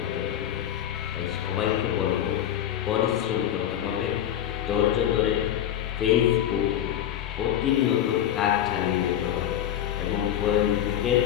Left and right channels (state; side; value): quieter; right; 10.9 dB